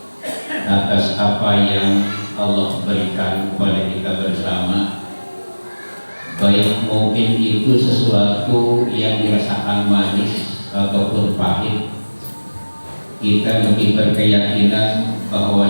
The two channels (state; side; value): inverted; both; correlation -1.00